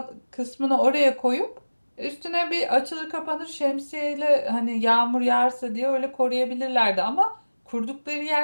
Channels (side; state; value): both; inverted; correlation -1.00